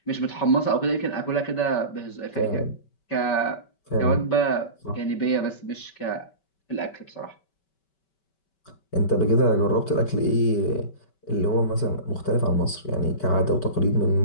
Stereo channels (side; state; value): right; late; 5.2 ms